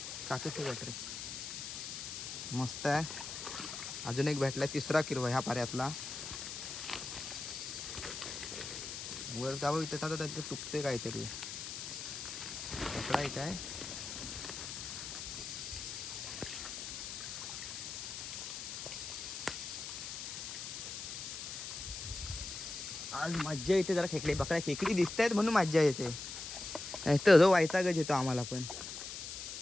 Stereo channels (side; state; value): left; noise; hiss, 7 dB below the sound